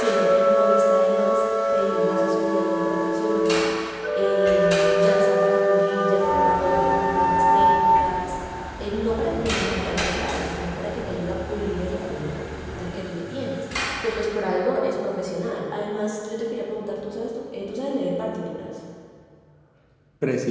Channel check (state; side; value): identical; both; correlation 1.00